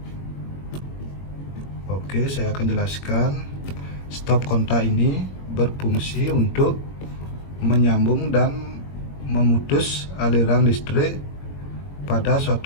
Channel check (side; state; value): right; late; 21 ms